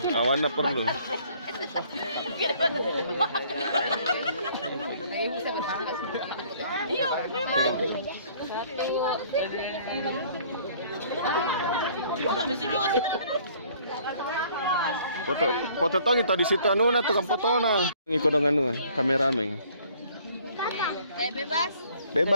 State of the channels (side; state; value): both; inverted; correlation -0.58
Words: awan apa perlu? Iya, memang. Foto tong itu di situ anu na tukang foto na. Ngikut dengan anu kameramen. Bebas.